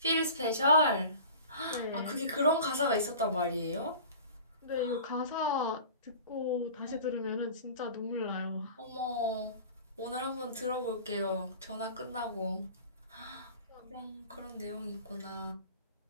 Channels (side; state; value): both; inverted; correlation -0.40